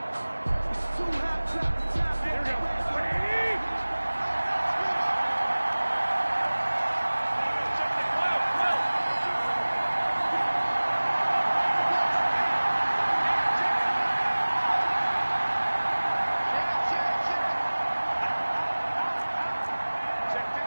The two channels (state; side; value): inverted; both; correlation -1.00